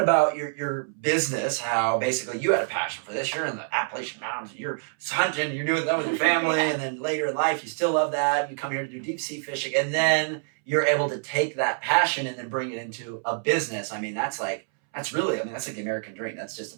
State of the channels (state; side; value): silent; left; 61 dB below the other